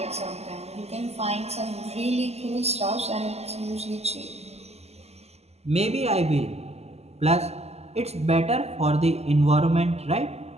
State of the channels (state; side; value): late; left; 0.30 ms